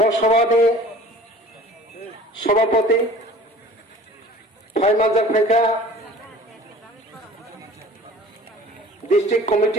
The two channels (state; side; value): normal; both; correlation 0.46